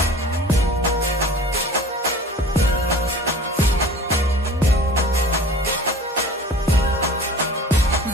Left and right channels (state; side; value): normal; both; correlation 0.43